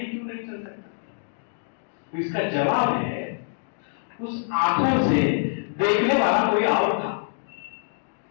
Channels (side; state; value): right; silent; digital silence